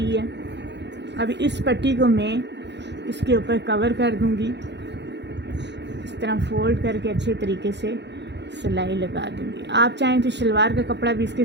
है। अब इस पट्टी को मैं इसके ऊपर कवर कर दूंगी, इस तरह फोल्ड करके अच्छे तरीके से सिलाई लगा दूंगी। आप चाहें तो शलवार का कपड़ा भी इसके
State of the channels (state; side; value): late; left; 0.51 ms